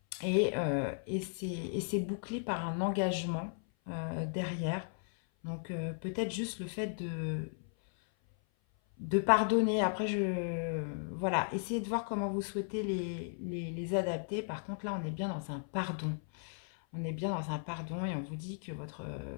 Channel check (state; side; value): silent; right; 54 dB below the other